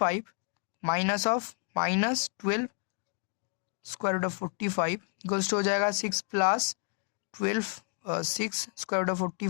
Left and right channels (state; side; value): quieter; right; 38.3 dB